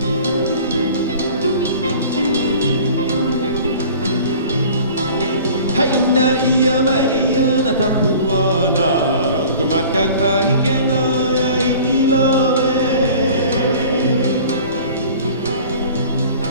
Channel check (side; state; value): both; inverted; correlation -0.45